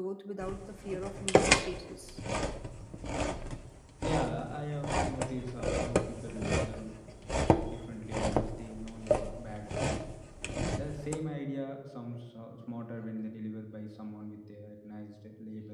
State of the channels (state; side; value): identical; both; correlation 1.00